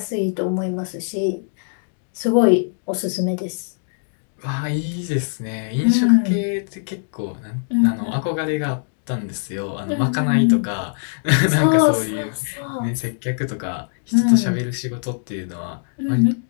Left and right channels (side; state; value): right; silent; digital silence